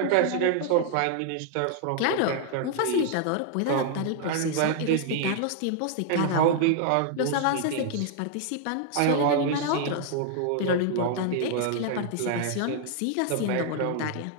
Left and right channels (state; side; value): different; both; correlation 0.00